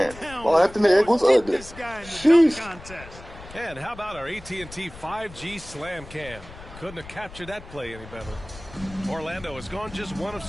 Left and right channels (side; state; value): left; noise; rumble, 17 dB below the sound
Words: Well, Anthony Edwards ugly. Sheesh. And how about our AT&T 5G Slam Cam? Couldn't have captured that play any better. Orlando has gone just 1 of